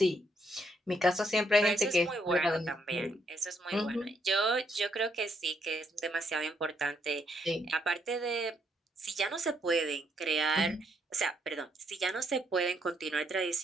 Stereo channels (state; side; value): normal; both; correlation 0.74